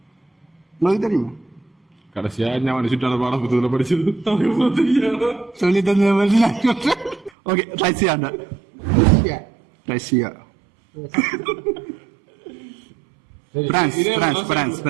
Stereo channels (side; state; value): left; drops out; at 7.3 s